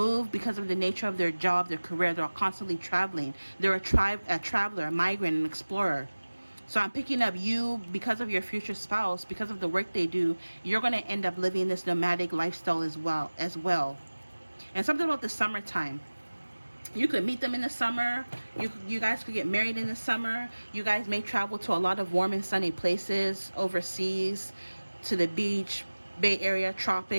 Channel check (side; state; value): both; inverted; correlation -1.00